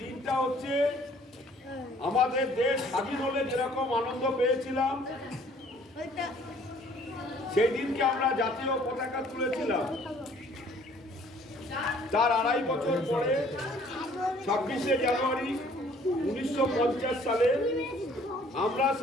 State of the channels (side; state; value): both; normal; correlation 0.57